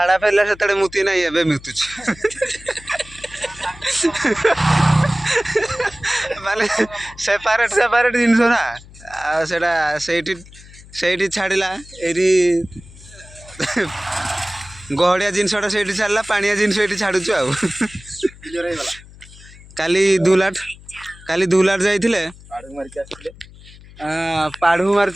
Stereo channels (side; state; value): left; noise; hum, 20 dB below the sound